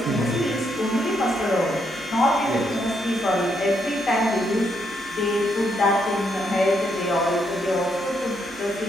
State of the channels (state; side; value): normal; both; correlation 0.76